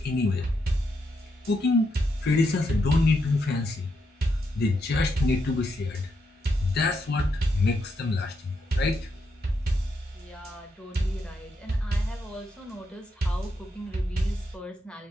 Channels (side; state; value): both; normal; correlation 0.81